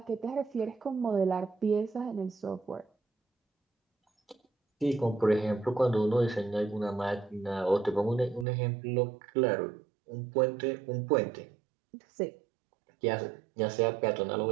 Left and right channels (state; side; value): drops out; left; at 8.5 s